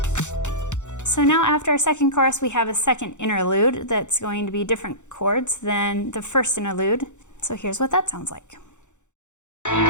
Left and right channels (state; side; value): late; right; 0.84 ms